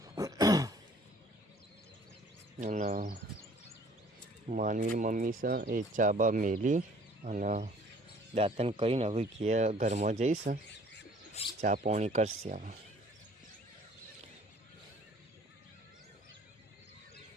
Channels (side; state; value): both; normal; correlation 0.55